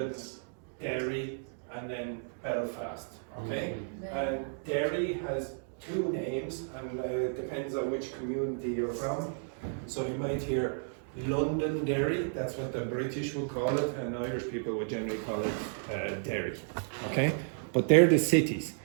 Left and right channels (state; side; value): silent; left; digital silence